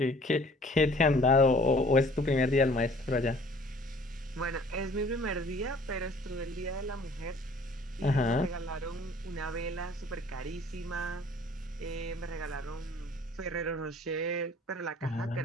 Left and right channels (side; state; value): both; normal; correlation 0.53